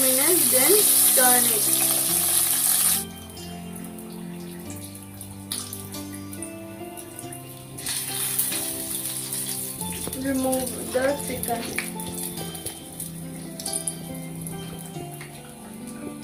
minutes, then turn it. Remove the chicken.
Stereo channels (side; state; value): both; identical; correlation 1.00